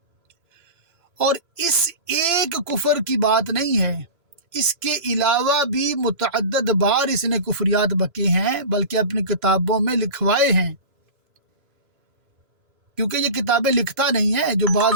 اور اس ایک کفر کی بات نہیں ہے، اس کے علاوہ بھی متعدد بار اس نے کفریات بکے ہیں، بلکہ اپنی کتابوں میں لکھوائے ہیں، کیونکہ یہ کتابیں لکھتا نہیں ہے۔ جو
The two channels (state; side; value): late; left; 3.0 ms